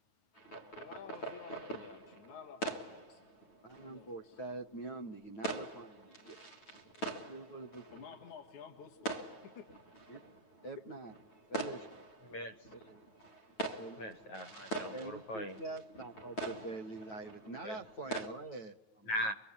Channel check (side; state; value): right; late; 9.2 ms